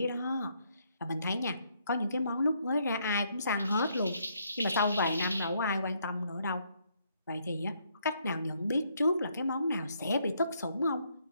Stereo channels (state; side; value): inverted; both; correlation -0.72